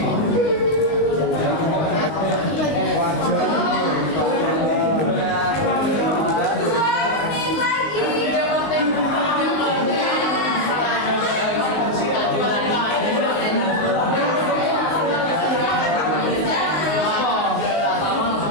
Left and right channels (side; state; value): right; late; 19 ms